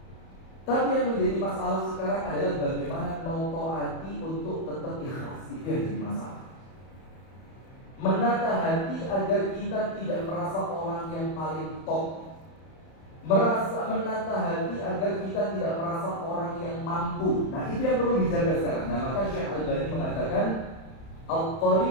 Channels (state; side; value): late; right; 31 ms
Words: Tapi yang menjadi masalah sekarang adalah bagaimana notoati untuk tetap ikhlas. Itu yang jadi masalah. Menata hati agar kita tidak merasa orang yang paling top. Menata hati agar kita tidak merasa orang yang mampu. Nah itu yang perlu dijaga sekarang. Nah maka Syekh Al-Albani mengatakan